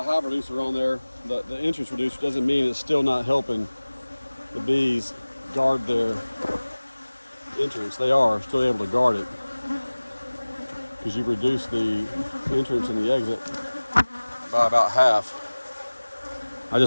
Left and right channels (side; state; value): both; inverted; correlation -1.00